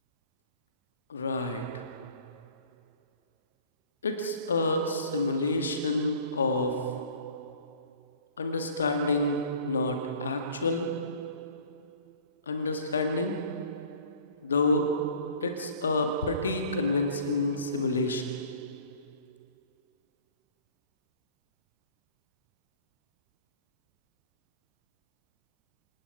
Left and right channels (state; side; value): inverted; both; correlation -0.50